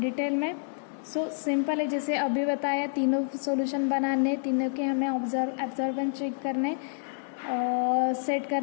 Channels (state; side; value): silent; right; 59 dB below the other